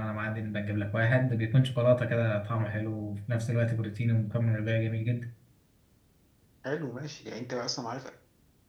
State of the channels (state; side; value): identical; both; correlation 1.00